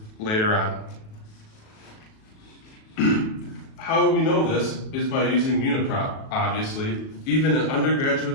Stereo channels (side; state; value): right; late; 37 ms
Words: later on. How we know this is by using Uniprop, obviously. Even an